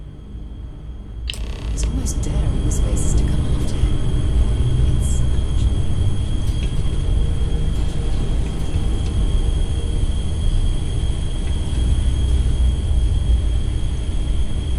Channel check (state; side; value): identical; both; correlation 1.00